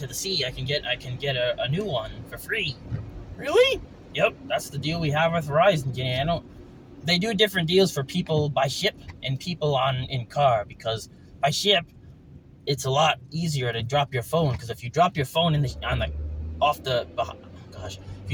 the sea, I can get a new one for free. Really? Yep, that's the deal we have with Verizon, Janae. They do different deals for people by ship and people in car, because by ship it's a lot easier to drop your phone, because if you drop your phone if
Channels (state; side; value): identical; both; correlation 1.00